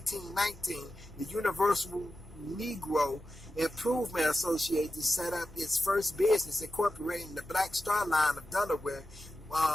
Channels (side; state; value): both; normal; correlation 0.92